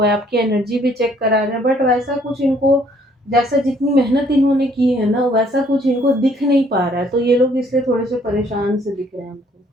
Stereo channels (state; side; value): normal; both; correlation 0.63